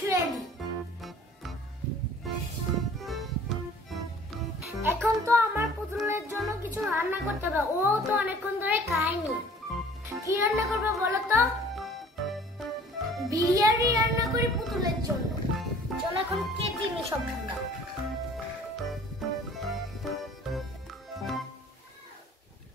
দিই। এখন তো আমার পুতুলের জন্য কিছু রান্না করতে হবে। ও তো অনেকক্ষণ ধরে খায়নি। কি রান্না করবো বলো তো? বিরিয়ানি রান্না করি পুতুলের জন্য। চলো এখন কেটে নি সবগুলো।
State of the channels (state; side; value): normal; both; correlation 0.50